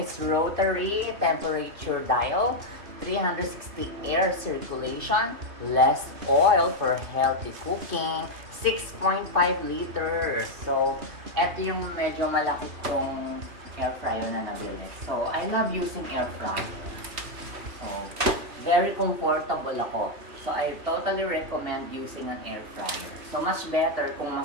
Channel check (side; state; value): left; late; 2.5 ms